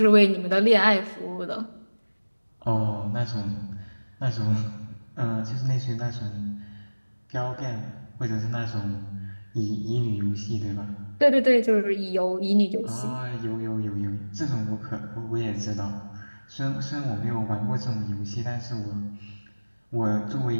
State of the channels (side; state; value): both; inverted; correlation -1.00